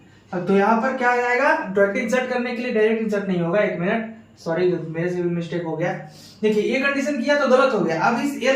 अब तो यहाँ पर क्या आ जाएगा, 20 इंसर्ट करने के लिए डायरेक्ट इंसर्ट नहीं होगा। एक मिनट, सॉरी मेरे से भी मिस्टेक हो गया। देखिए ये कंडीशन किया तो गलत हो गया, अब इस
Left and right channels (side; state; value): both; identical; correlation 1.00